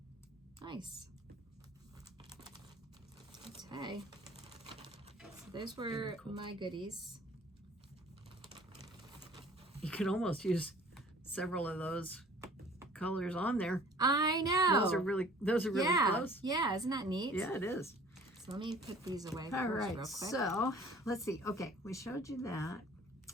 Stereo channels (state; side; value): normal; both; correlation 0.50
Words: Nice. Okay. So those were my goodies. You could almost use several of those colors on there. I know. Those are really close. Yeah, isn't that neat? Yeah, it is. So let me put these away All right, real quick. So let's see. Okay, we showed you that.